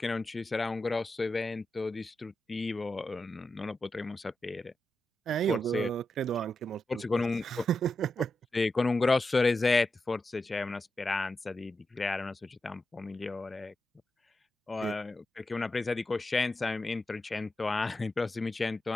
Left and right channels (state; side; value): normal; both; correlation 0.89